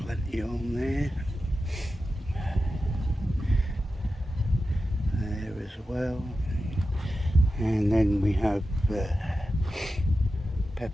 on there as well, and then we have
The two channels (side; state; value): both; normal; correlation 0.92